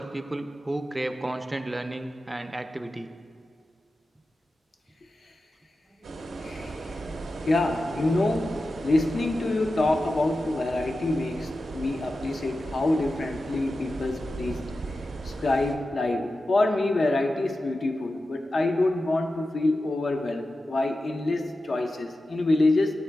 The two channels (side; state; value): both; normal; correlation 0.92